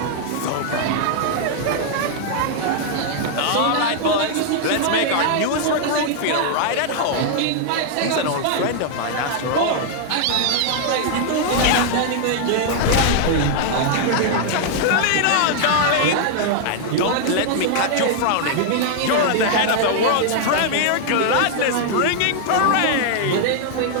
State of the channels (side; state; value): both; different; correlation -0.01